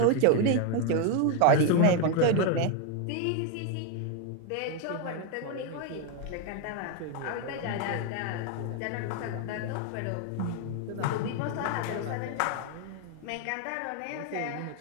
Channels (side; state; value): both; different; correlation 0.01